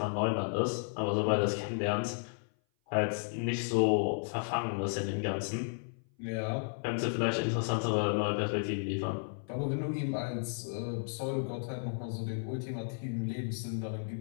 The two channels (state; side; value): silent; right; 55 dB below the other